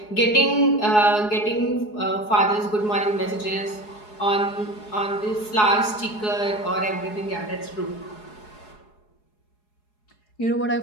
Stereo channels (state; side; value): late; right; 4.8 ms